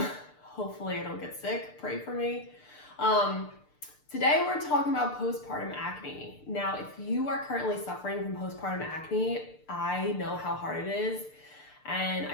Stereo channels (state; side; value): late; right; 6.7 ms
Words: hopefully I don't get sick. Pray for me. Today we're talking about postpartum acne. Now, if you are currently suffering from postpartum acne, I know how hard it is. And